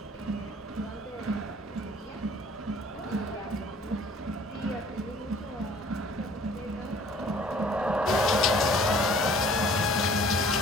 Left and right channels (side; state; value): both; normal; correlation 0.54